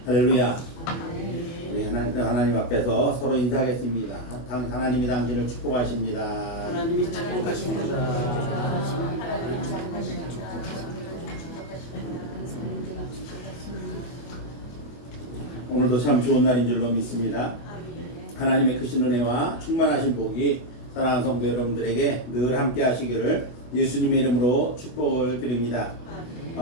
할렐루야. 우리 하나님 앞에서 서로 인사하겠습니다. 하나님이 당신을 축복하십니다. 하나님이 축복하십니다. 오늘도 참 좋은 날인 줄로 믿습니다. 하나님의 크신 은혜와 충만하신 복이 사랑하는 성도 여러분들에게 늘 함께 하시기를 예수님의 이름으로 축복을 드립니다.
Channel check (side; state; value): right; late; 24 ms